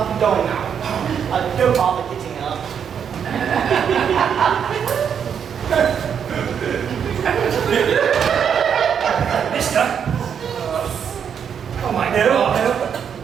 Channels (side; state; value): left; quieter; 7.7 dB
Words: going now. Don't bother getting up. Mister? Oh my God. No.